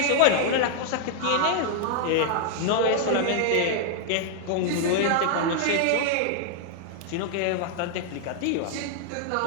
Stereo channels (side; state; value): both; different; correlation 0.00